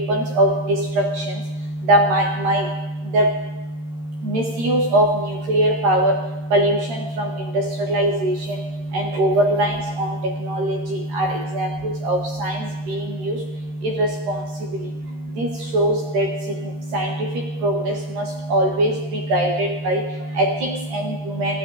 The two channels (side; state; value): left; late; 13 ms